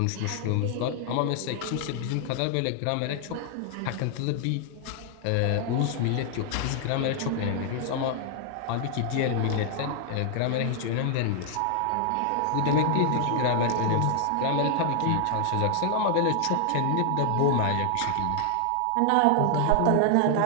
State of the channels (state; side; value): different; both; correlation 0.00